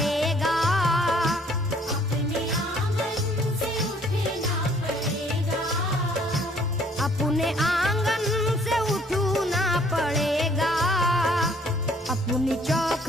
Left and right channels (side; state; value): both; normal; correlation 0.61